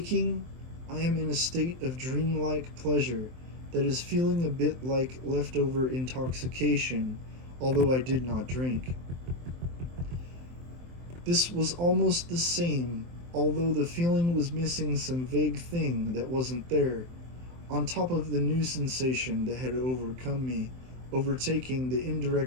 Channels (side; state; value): left; late; 23 ms